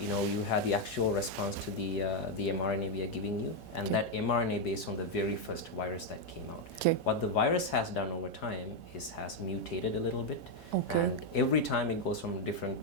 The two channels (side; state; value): both; normal; correlation 0.02